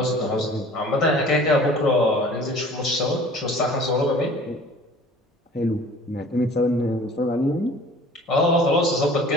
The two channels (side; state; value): both; normal; correlation 0.47